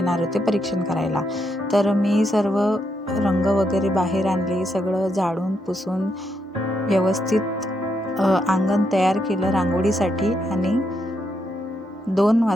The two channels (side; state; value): both; normal; correlation 0.79